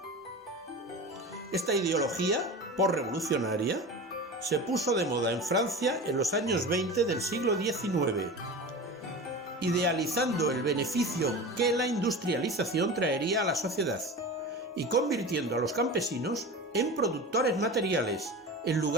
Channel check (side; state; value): both; normal; correlation 0.31